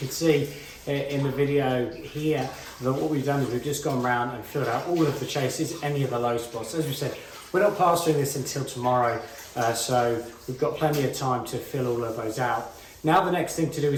see in the video here that what we've done is we've just gone around and filled out all of the chases, any of the low spots. As we said, we're not plastering this until tomorrow, so we've got plenty of time to fill all of those out. Now the next thing to do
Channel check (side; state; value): both; identical; correlation 1.00